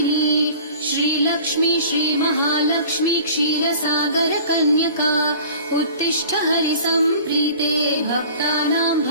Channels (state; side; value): inverted; both; correlation -0.43